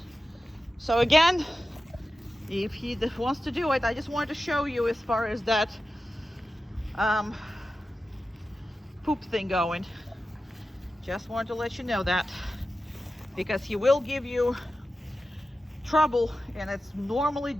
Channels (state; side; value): normal; both; correlation 0.93